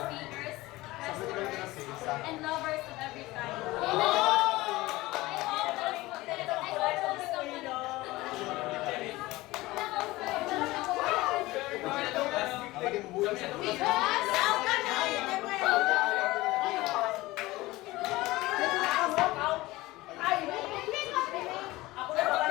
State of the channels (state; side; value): quieter; right; 19.3 dB